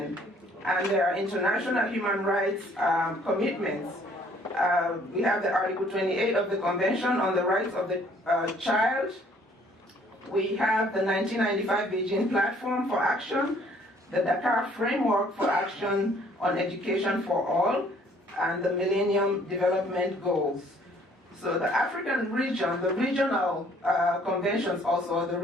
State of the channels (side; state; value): both; normal; correlation 0.60